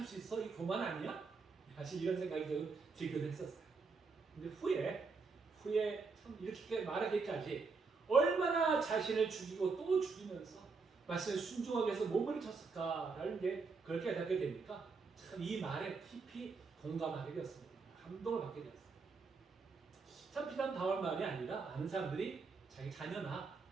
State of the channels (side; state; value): left; quieter; 4.5 dB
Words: 수 있어? 이 교만 아니야? 사실 이런 생각이 좀 들기도 했었어요. 근데 후에 참 이렇게 말하기까지 얼마나 자신을 죽이고 또 죽이면서 말씀에 순종하기 위해서 몸을 쳤을까라는 게 그걸 깨닫게 되니까 참 이 말에 깊이 공감하게 되었습니다. 감동을 받게 되었어요. 참 비단 바울 말이 아니라 많은 사람들이 자기 자녀나